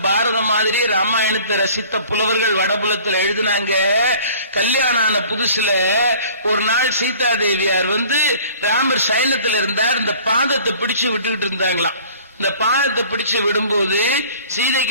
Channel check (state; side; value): inverted; both; correlation -0.49